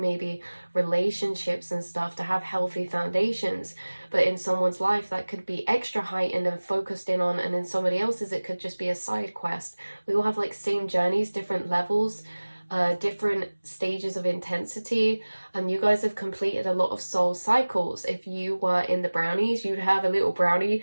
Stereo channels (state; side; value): inverted; both; correlation -1.00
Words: relationships and stuff, to have healthy foundations. But in someone's life that could be extra heightened and focused in on, and in somebody else's it could just be a side quest. We all have like same journeys, different levels, different stages of intensity, and you guys have completed a lot of soul cycles. If you were in the brownies, you'd have a little brownie